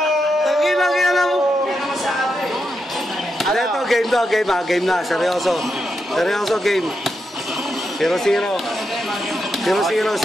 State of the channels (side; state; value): both; normal; correlation 0.85